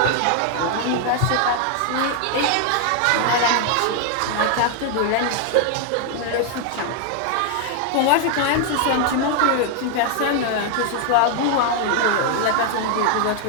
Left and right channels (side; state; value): both; different; correlation 0.00